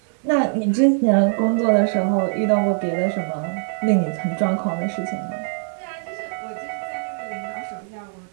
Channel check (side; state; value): left; silent; 64 dB below the other